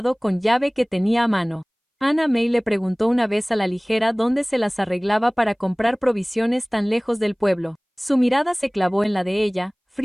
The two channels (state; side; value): identical; both; correlation 1.00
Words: con llave que tenía a mano. Anna May le preguntó una vez a la ligera dónde se las arreglaba para comprar provisiones tan lejos del pueblo. Su mirada se clavó en la de ella,